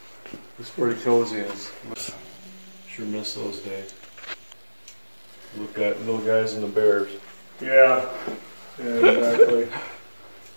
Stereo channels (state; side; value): inverted; both; correlation -1.00